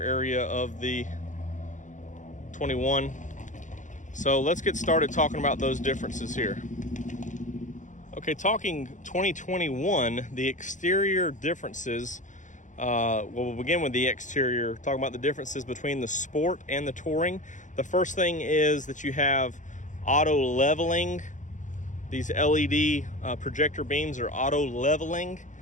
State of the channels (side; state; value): right; late; 0.36 ms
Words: of the 21. So let's get started talking about those differences here. Okay, talking 2021, the exterior differences, we'll begin with the exterior, talking about the differences between the Sport and the Touring. The first thing is that you have auto leveling. These LED projector beams are auto leveling